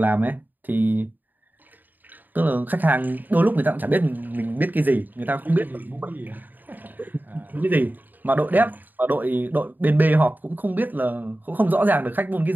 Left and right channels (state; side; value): late; left; 0.088 ms